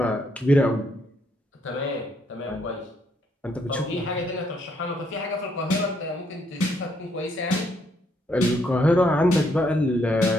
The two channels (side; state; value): both; normal; correlation 0.72